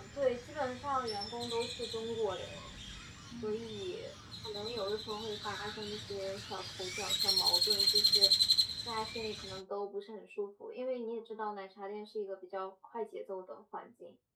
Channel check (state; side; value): identical; both; correlation 1.00